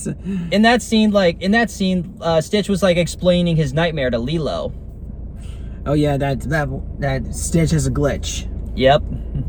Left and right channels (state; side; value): identical; both; correlation 1.00